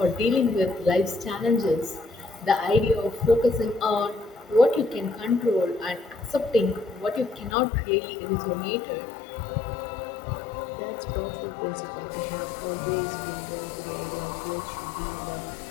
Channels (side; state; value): right; drops out; at 7.6 s